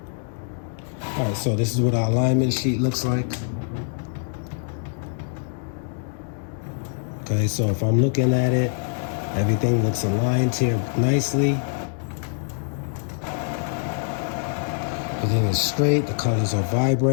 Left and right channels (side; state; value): right; silent; 62 dB below the other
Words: All right, so this is what our alignment sheet looks like. Okay, so if I'm looking at it, everything looks aligned here nicely. Everything is straight, the colors are